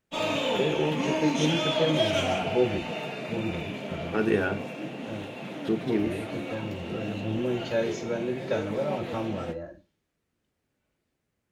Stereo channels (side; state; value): both; identical; correlation 1.00